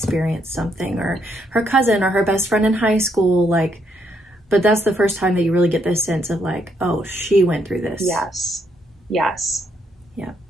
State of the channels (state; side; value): normal; both; correlation 0.75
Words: something, or her cousin, or her best friend in high school, like, but that's the first time that you really get this sense of like, oh, she went through this. Yes. Yes. Yeah,